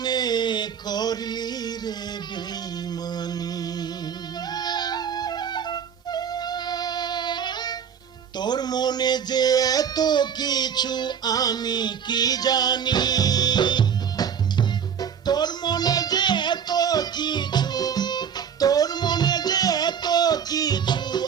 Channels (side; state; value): left; quieter; 7.7 dB